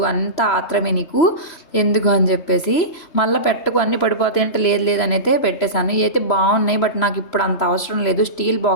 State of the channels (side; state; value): right; late; 3.0 ms